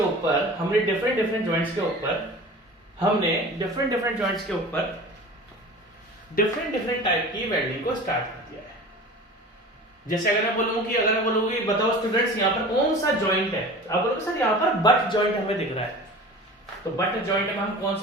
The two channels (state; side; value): normal; both; correlation 0.38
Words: ऊपर हमने डिफरेंट जॉइंट्स के ऊपर डिफरेंट टाइप की वेल्डिंग को स्टार्ट कर दिया है। जैसे अगर मैं बोलूँ कि बताओ स्टूडेंट्स यहाँ पर कौन सा जॉइंट है, आप बोलोगे सर यहाँ पर बट जॉइंट हमें दिख रहा है। तो बट जॉइंट में हम कौन